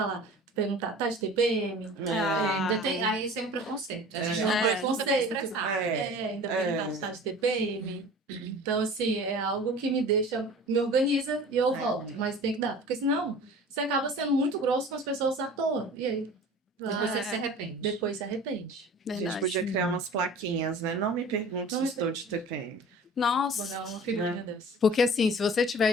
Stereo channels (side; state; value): both; normal; correlation 0.42